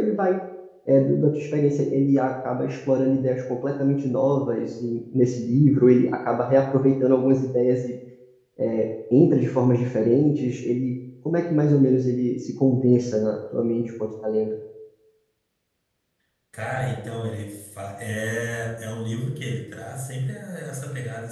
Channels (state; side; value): identical; both; correlation 1.00